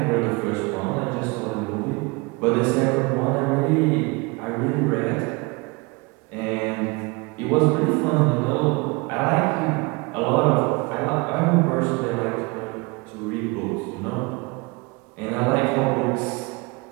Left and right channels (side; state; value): left; quieter; 27.2 dB